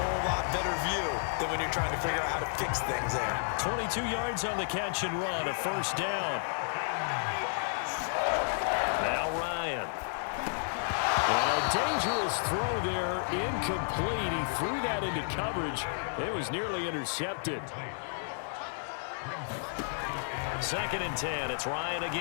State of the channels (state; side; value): silent; right; digital silence